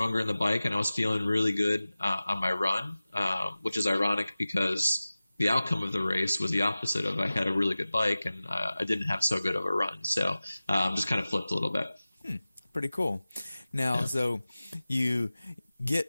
in the bike, and I was feeling really good on my run, which is ironic because the outcome of the race was the opposite of I had a really good bike and I didn't have so good of a run. So just kind of flipped a little bit. Pretty cool. Now, So you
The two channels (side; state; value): both; inverted; correlation -0.97